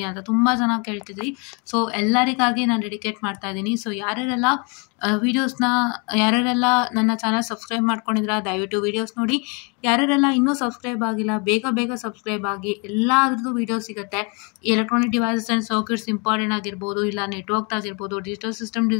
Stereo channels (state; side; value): quieter; right; 32.8 dB